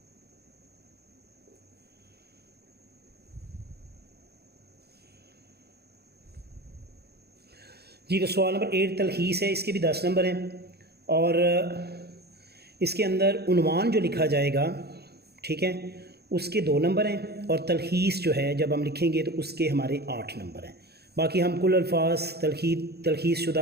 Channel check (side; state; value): left; late; 0.47 ms